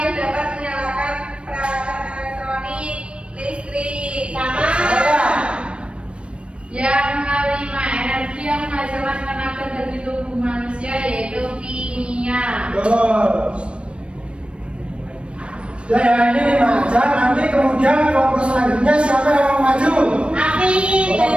dapat menyalakan peralatan elektronik, listrik. Sama. Sama. Yang kelima, energi yang menghasilkan tenaga dari tubuh manusia yaitu kimia. Terus. Ya ini 5 aja, nanti kemudian kelompok selanjutnya siapa yang mau maju? Amin.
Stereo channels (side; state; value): left; late; 0.059 ms